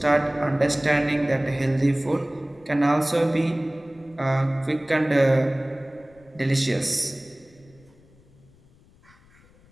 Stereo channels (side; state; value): left; noise; rumble, 28 dB below the sound